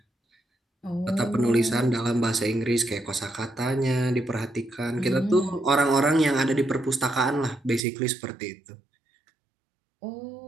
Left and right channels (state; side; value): drops out; left; at 7.8 s